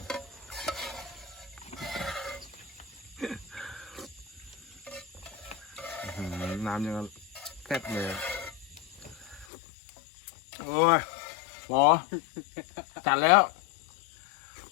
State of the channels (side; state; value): right; drops out; at 9.5 s